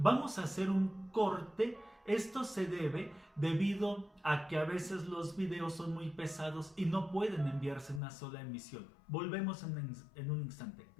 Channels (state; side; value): drops out; right; at 8.0 s